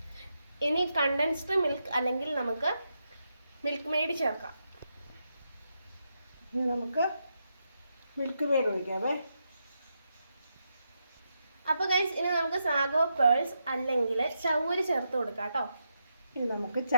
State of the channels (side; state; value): both; inverted; correlation -0.84